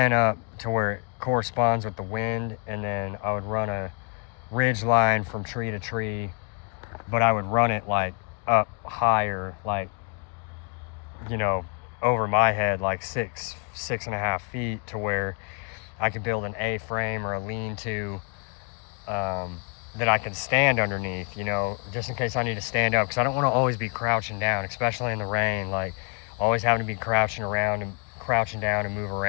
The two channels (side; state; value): right; quieter; 33.9 dB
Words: up to where it corresponds with the wind, and then I would run a ridge line from tree to tree, but I would run it like up higher, like, you know, over my head, like 6.5 feet, to where I could build an A-frame or a lean-to that I can stand underneath, you know, just in case I need to stand up, because I don't want to always be crouching down, especially in the rain, like always having to be crouching down and move